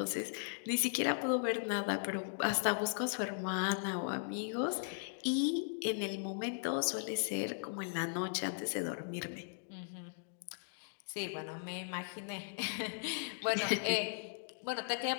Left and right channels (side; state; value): right; silent; digital silence